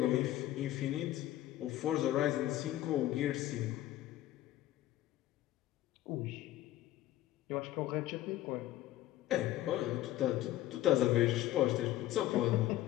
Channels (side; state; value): right; quieter; 14.3 dB